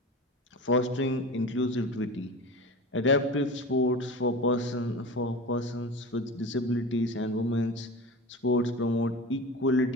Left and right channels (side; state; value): both; normal; correlation 0.31